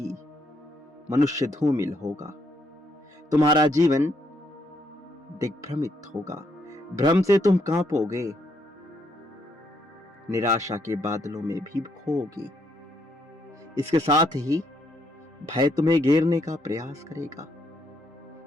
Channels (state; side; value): normal; both; correlation 0.74